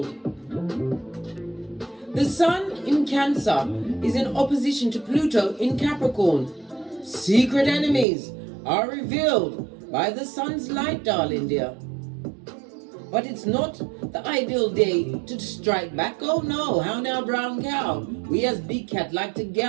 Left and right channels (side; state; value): left; drops out; at 8.1 s